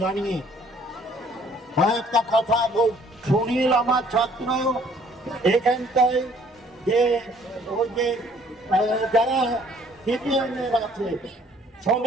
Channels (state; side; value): normal; both; correlation 0.59